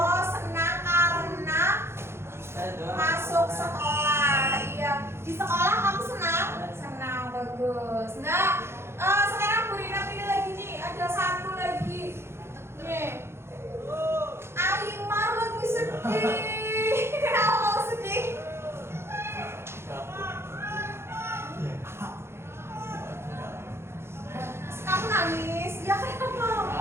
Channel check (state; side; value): late; left; 0.12 ms